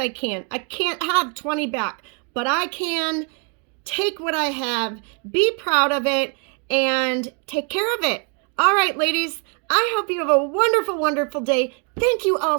can. I can't have 20 back, but I can take what I have, be proud of it, and take care of it. All right, ladies. I hope you have a wonderful, wonderful day. Thank you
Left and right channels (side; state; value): left; quieter; 36.2 dB